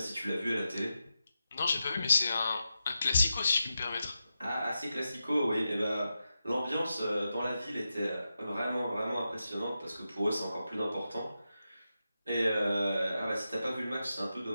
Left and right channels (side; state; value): both; inverted; correlation -0.89